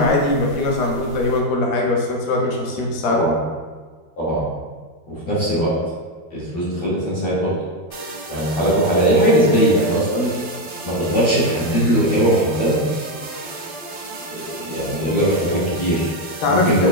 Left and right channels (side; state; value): right; late; 12 ms